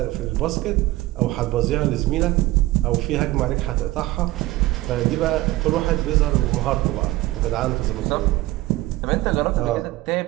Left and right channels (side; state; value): left; quieter; 17.9 dB